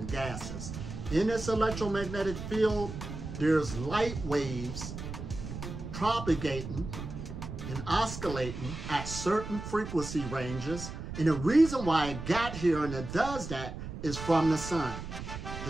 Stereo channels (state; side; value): noise; right; rumble, 8 dB below the sound